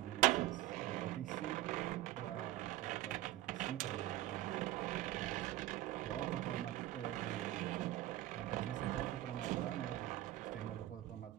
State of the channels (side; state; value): left; quieter; 15.4 dB